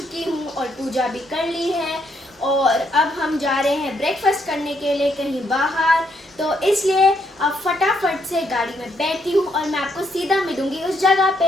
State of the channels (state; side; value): normal; both; correlation 0.74